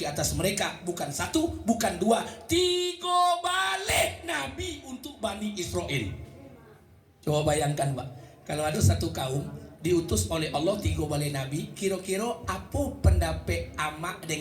atas mereka. Bukan satu, bukan dua, 3 balik Nabi untuk Bani Israel. Coba bayangkan Pak, kalau ada satu kaum diutus oleh Allah 3 balik Nabi, kira-kira apa pendapat amak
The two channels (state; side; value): identical; both; correlation 1.00